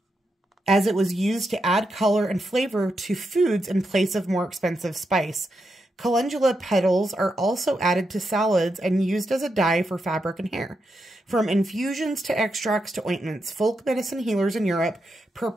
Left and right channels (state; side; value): normal; both; correlation 0.85